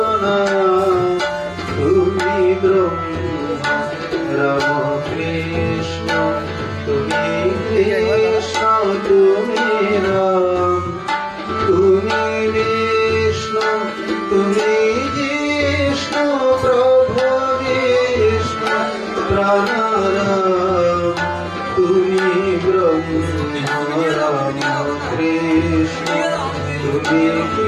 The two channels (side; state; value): both; identical; correlation 1.00